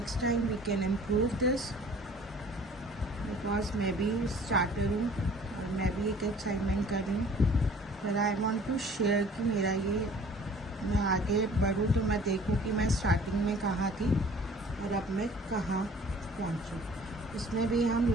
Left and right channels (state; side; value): normal; both; correlation 0.50